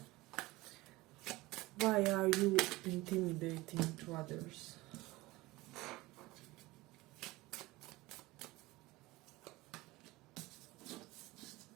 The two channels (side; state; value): left; quieter; 20.4 dB